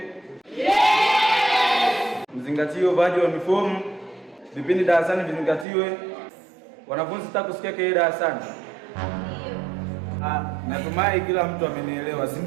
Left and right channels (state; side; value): drops out; left; at 5.7 s